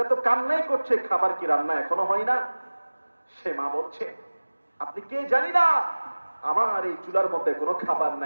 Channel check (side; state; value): both; inverted; correlation -1.00